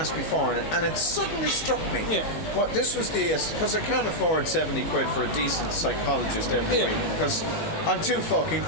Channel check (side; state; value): right; late; 19 ms